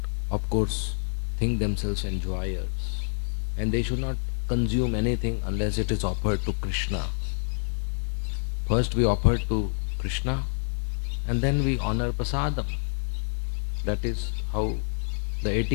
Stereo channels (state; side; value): silent; right; 60 dB below the other